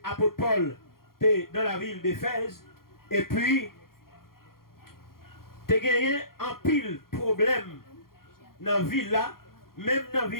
l'apôtre Paul était dans la ville d'Éphèse, et puis, tu as gagné un pile problème dans la ville là, même dans la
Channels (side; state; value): right; late; 0.92 ms